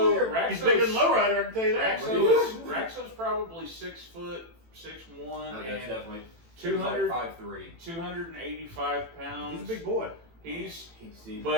weird. He's bigger than Lowrider, I can tell you that. Raxo's probably 6 foot 6'1" Okay, that's and definitely 200 5'3". 285 pounds. He's a big boy. He's He's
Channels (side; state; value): left; late; 18 ms